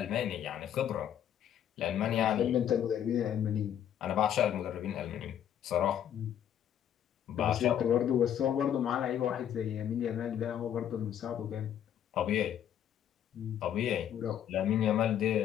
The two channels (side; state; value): right; quieter; 10.0 dB